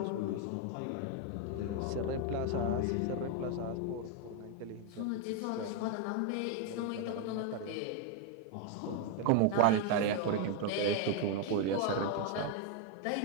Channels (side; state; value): both; different; correlation 0.01